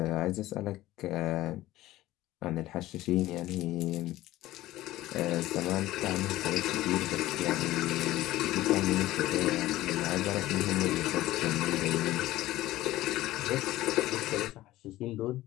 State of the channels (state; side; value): quieter; right; 16.1 dB